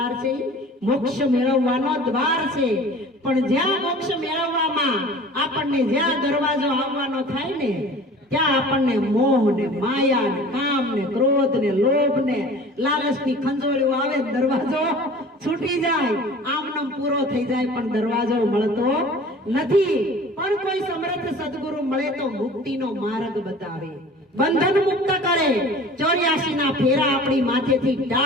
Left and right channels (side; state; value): both; normal; correlation 0.44